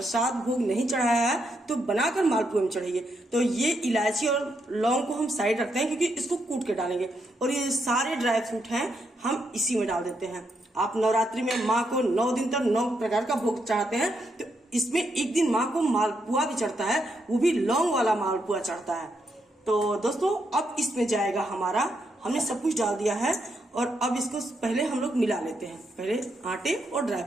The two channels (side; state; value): both; normal; correlation 0.80